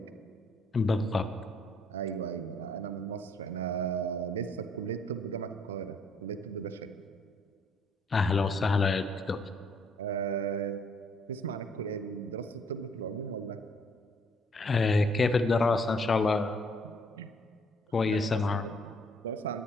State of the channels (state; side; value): normal; both; correlation 0.65